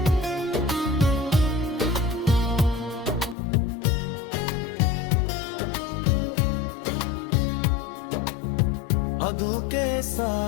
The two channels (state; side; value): drops out; right; at 3.4 s